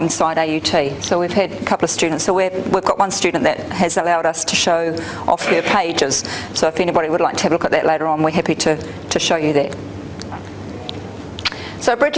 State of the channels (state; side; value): identical; both; correlation 1.00